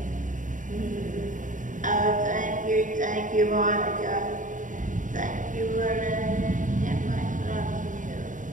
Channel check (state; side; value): late; left; 0.37 ms